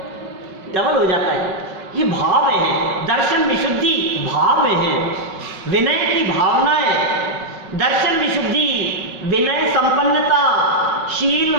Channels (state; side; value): late; left; 5.4 ms